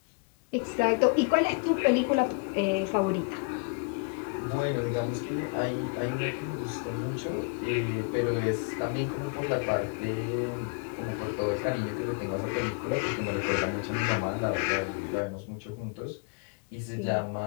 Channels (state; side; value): quieter; right; 34.6 dB